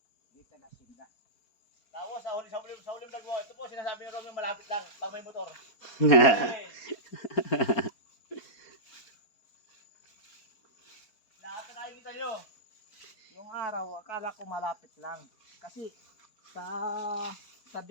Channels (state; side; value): late; right; 4.5 ms